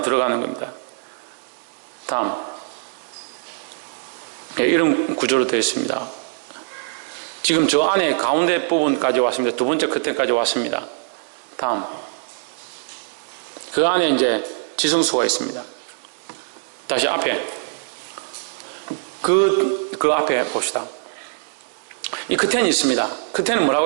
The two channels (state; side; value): silent; left; digital silence